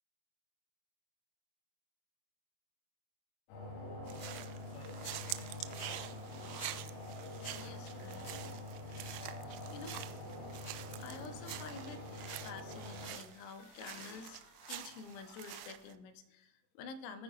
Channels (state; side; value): late; right; 26 ms